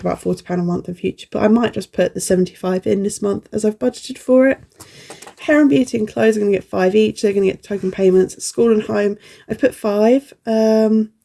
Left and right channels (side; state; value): both; identical; correlation 1.00